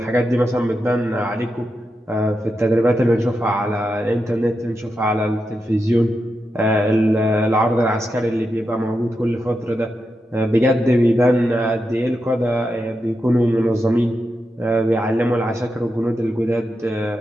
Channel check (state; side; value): normal; both; correlation 0.87